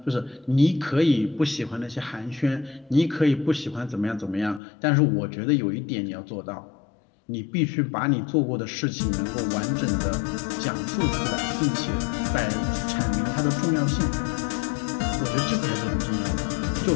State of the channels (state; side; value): drops out; right; at 4.6 s